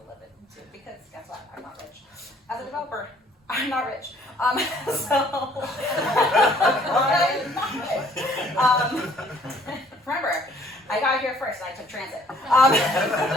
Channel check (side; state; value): both; normal; correlation 0.60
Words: live into because guess what? I'm not rich. As a developer, I'm not rich. So public transit.